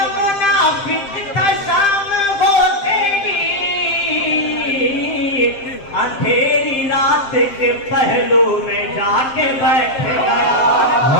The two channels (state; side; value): late; right; 7.5 ms